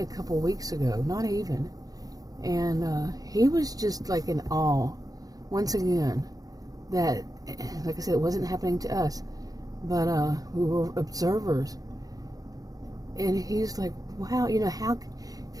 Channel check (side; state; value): left; late; 0.18 ms